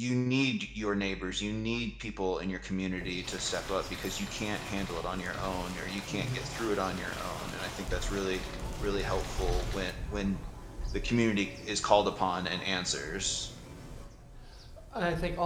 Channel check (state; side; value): identical; both; correlation 1.00